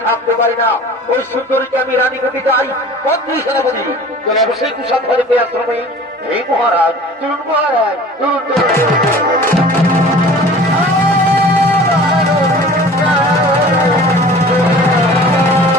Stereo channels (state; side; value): normal; both; correlation 0.44